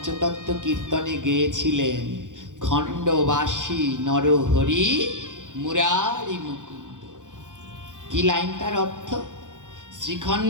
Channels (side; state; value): left; late; 0.87 ms